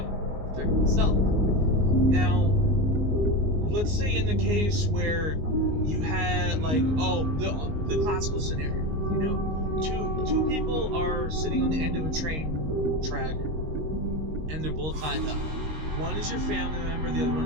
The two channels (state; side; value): late; left; 19 ms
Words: or protect myself. Now, let's say in the case where you had, the classical scenario, two people are sitting on the end of a train track, and they're both tied up. One is your family member, the other one